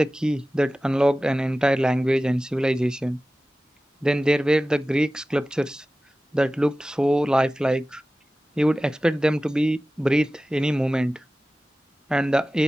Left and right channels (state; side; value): normal; both; correlation 0.96